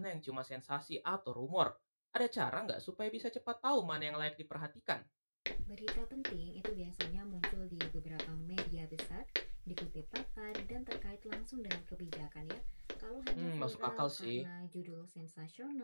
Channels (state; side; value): inverted; both; correlation -1.00